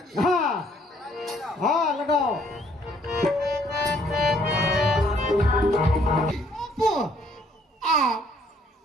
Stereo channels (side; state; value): both; normal; correlation 0.64